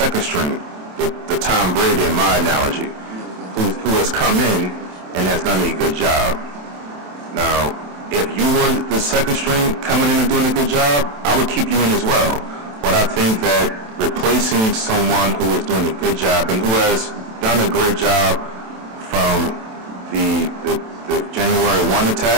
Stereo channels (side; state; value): left; late; 27 ms